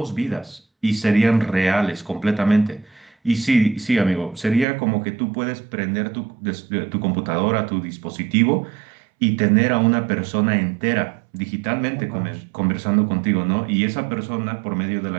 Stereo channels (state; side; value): drops out; left; at 4.7 s